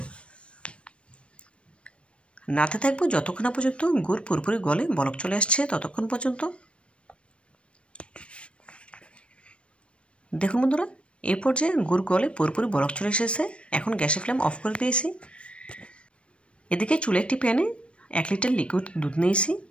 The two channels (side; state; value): right; late; 0.059 ms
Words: নাড়তে থাকবো যতক্ষণ না পর্যন্ত গুড় পুরোপুরি গলে বলক চলে আসছে ততক্ষণ পর্যন্ত। দেখুন বন্ধুরা, এই পর্যায়ে গুড় গলে পুরোপুরি বলক চলে এসেছে। এখন গ্যাসের ফ্লেম অফ করে দিয়েছি। এদিকে চুলে একটি প্যানে 1 লিটার লিকুইড দুধ নিয়েছি।